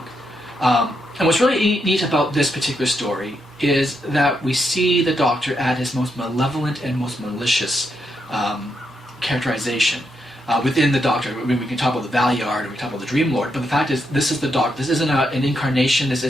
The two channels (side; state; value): both; normal; correlation 0.81